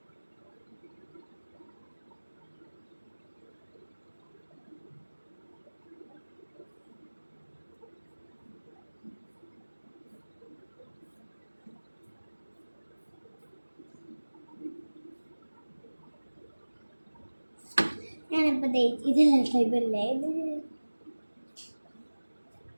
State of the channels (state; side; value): inverted; both; correlation -1.00